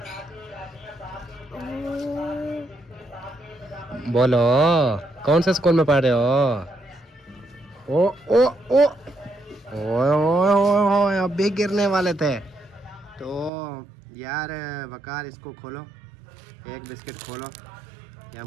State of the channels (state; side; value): drops out; left; at 13.5 s